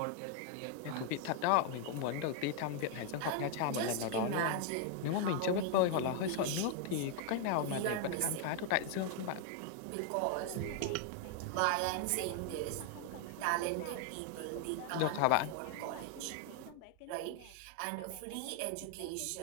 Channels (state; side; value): different; both; correlation 0.00